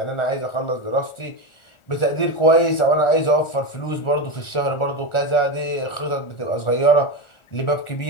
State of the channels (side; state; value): right; late; 1.4 ms